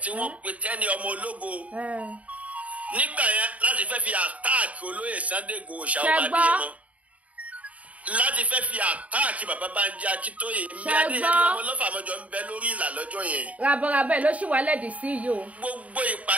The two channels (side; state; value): left; late; 0.068 ms